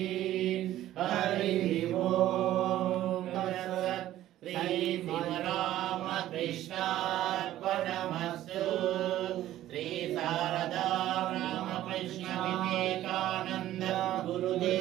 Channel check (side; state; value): left; quieter; 13.7 dB